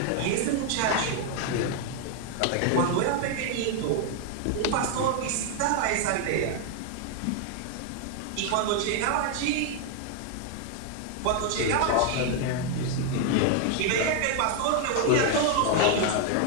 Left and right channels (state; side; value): different; both; correlation 0.00